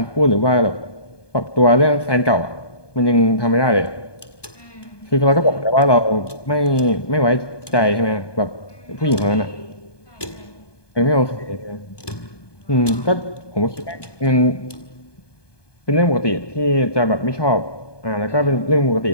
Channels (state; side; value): late; right; 1.2 ms